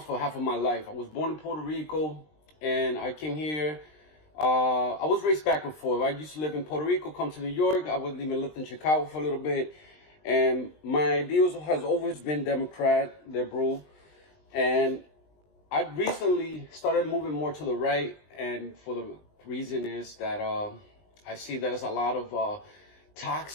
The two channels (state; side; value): late; right; 20 ms